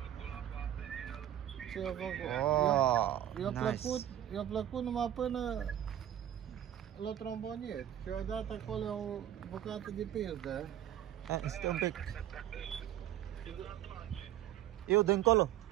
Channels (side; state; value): left; quieter; 11.5 dB